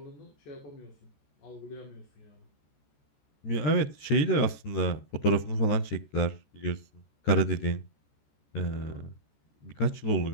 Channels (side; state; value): right; late; 14 ms